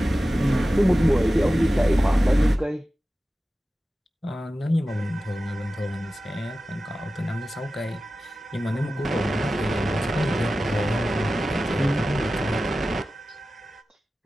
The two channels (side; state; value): both; normal; correlation 0.95